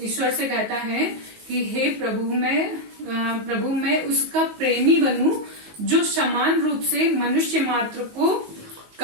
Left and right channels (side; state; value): left; late; 19 ms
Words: से कहता है कि हे प्रभु मैं उसका प्रेमी बनूं, जो समान रूप से मनुष्य मात्र को